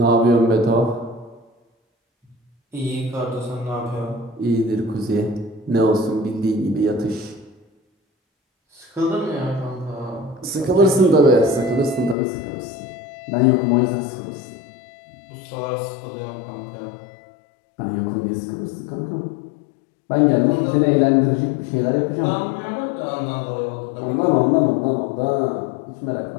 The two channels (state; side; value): drops out; right; at 12.2 s